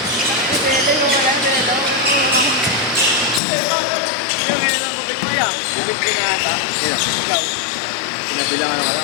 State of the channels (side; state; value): right; drops out; at 3.4 s